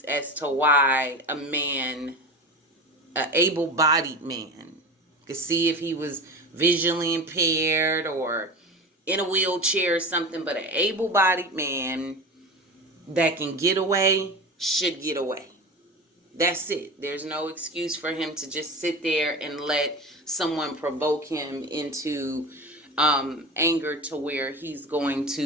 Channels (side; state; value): both; normal; correlation 0.29